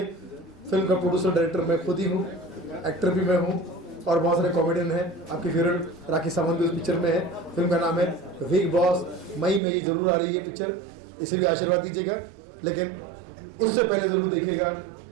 फिल्म का प्रोड्यूसर डायरेक्टर मैं खुद ही हूँ, एक्टर भी मैं हूँ और बहुत सारे कॉमेडियन हैं। आपकी फेवरेट राखी सावंत भी उस पिक्चर में है। फिल्म का नाम है बिग बॉस। मई में ये जरूर आ रही है पिक्चर, इसे भी आशीर्वाद दीजिएगा। लेकिन उससे पहले जरूर देखिएगा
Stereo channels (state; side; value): drops out; left; at 9.6 s